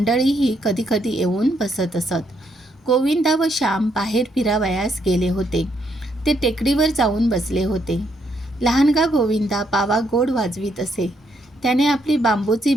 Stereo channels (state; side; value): normal; both; correlation 0.75